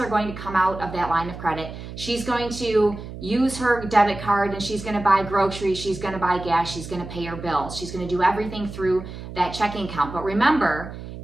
going to come out of that line of credit. She's going to use her debit card and she's going to buy groceries. She's going to buy gas. She's going to pay her bills. She's going to do everything through that checking account. But remember,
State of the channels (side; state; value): right; noise; hum, 11 dB below the sound